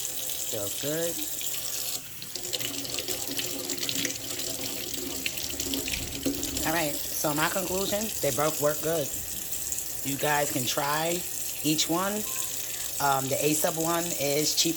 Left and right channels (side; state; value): both; identical; correlation 1.00